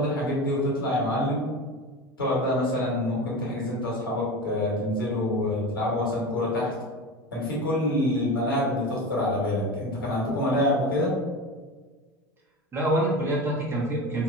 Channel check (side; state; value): both; normal; correlation 0.27